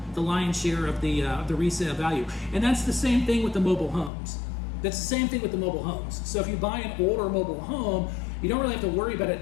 the lion's share of the resale value. And that's the same thing with the mobile homes. That's the same thing with the mobile homes. So if you buy an older mobile home, you don't really have to worry about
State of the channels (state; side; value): drops out; right; at 4.1 s